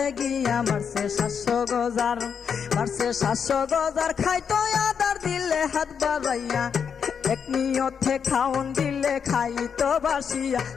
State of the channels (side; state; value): right; quieter; 6.9 dB